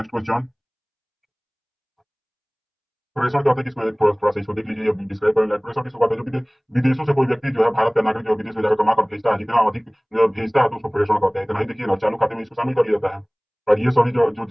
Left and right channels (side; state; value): both; identical; correlation 1.00